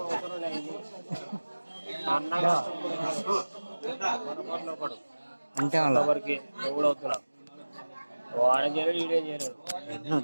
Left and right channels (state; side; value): inverted; both; correlation -1.00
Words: అంతే అలా వరకు ఎవడవుతున్నా వాడేం చేయలేడు ఈడేం చేయలేడు.